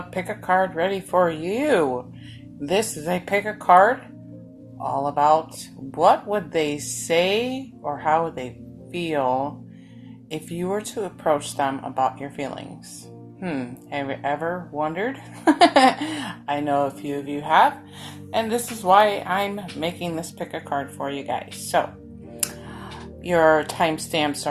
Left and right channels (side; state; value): both; identical; correlation 1.00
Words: pick a card ready for you. This is a pick a card all about what would they say or how would they feel if you were to approach them about your feelings. Have you ever wondered? I know a few of you have, and this is why I'm making this pick a card for you guys. So, your timestamps